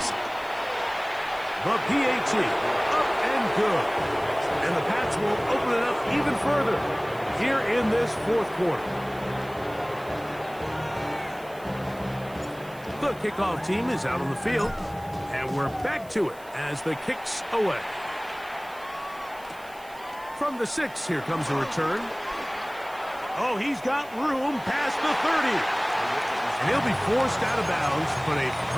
The PAT, up and good. And the Pats will open it up even further here in this 4th quarter. The kickoff team is out on the field, and we're back to it as the kick's away. From the 6, here comes a return. Oh, he's got room past the 30. And he'll be forced out of bounds, but a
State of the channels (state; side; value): noise; right; hiss, 23 dB below the sound